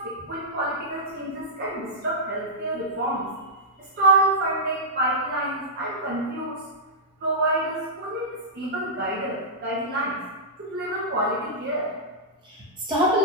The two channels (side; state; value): both; normal; correlation -0.11